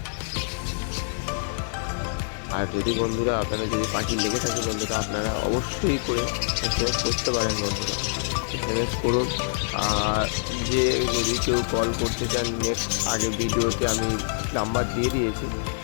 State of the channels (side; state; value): right; silent; digital silence